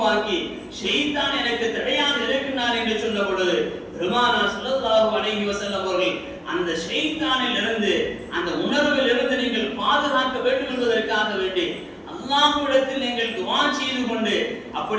உருவாக்கி ஷைத்தான் எனக்கு தடையாக இருக்கின்றான் என்று சொன்ன பொழுது பெருமானார் ஸல்லல்லாஹு அலைஹி வஸல்லம் அவர்கள் அந்த ஷைத்தானில் இருந்து அந்த உணர்வில் இருந்து நீங்கள் பாதுகாக்க வேண்டும் என்பதற்காக வேண்டி அல்லாஹ்விடத்தில் நீங்கள் துஆ செய்து கொண்டு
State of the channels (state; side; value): identical; both; correlation 1.00